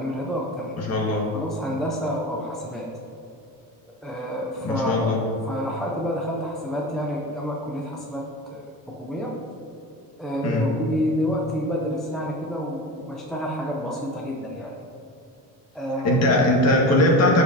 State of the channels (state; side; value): normal; both; correlation 0.28